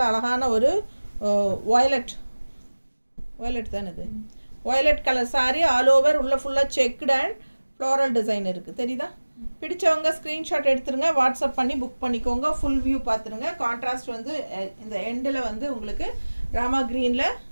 அழகான ஒரு வயலட் தானே இது. Violet colour saree all over உள்ள ஃபுல்லா செக்டு அண்ட் ஃப்ளோரல் டிசைன் இருக்கு. தெரியுதா? பிடிச்சவங்க ஸ்கிரீன்ஷாட் எடுத்துருங்க, வாட்ஸ்அப் பண்ணி புக் பண்ணிக்கோங்க. ஃபுல் வியூ பார்த்துருங்க. கான்ட்ராஸ்ட் வந்து இந்த எண்டில் வந்து உங்களுக்கு ராமா கிரீன்ல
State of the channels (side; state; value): both; inverted; correlation -1.00